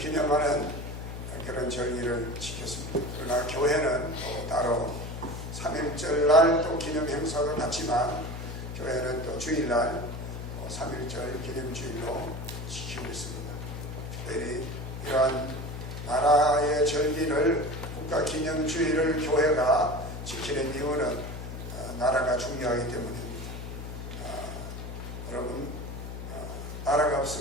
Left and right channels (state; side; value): noise; left; hum, 8 dB below the sound